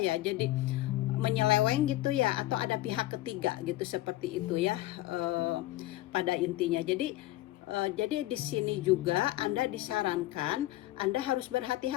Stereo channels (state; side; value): quieter; right; 16.8 dB